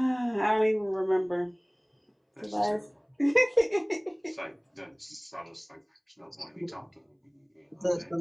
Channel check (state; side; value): identical; both; correlation 1.00